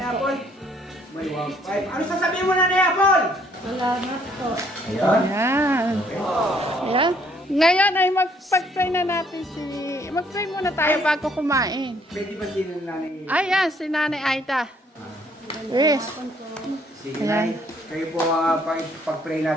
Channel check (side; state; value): both; normal; correlation 0.64